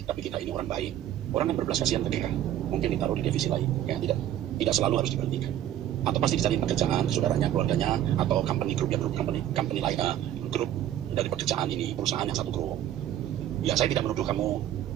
tapi kita ini orang baik, orang kan berbelas kasihan ke kita. Mungkin ditaruh di divisi lain, ya tidak selalu harus diberhentikan. Atau pasti dicari pekerjaan, saudaranya, keluarganya, atau company group company lain, grup dari pekerjaan ini, perusahaan yang satu grup. Ya saya tidak menuduh kamu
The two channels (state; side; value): quieter; left; 11.8 dB